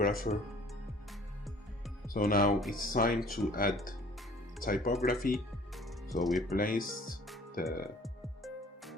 So now it's time to add typography. So we placed the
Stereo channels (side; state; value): both; normal; correlation 0.52